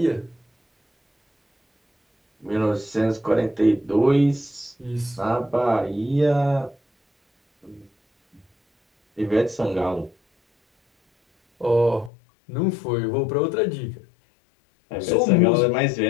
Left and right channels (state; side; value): drops out; right; at 12.1 s